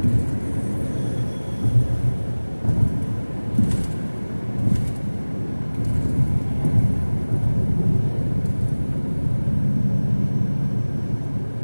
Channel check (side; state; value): both; inverted; correlation -1.00